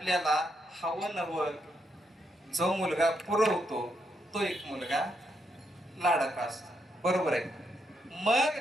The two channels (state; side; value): normal; both; correlation 0.79